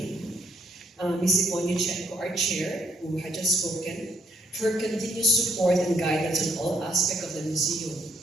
Ms. Yvonne Yuchenko, our chair, who had just spoken, for her continuous support and guidance on all aspects of the museum,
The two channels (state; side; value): normal; both; correlation 0.70